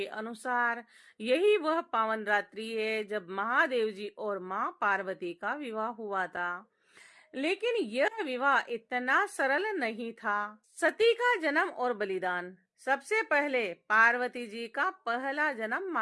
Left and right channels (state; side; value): identical; both; correlation 1.00